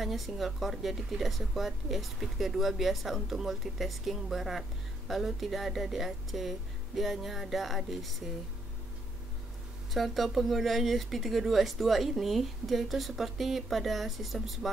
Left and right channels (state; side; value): normal; both; correlation 0.74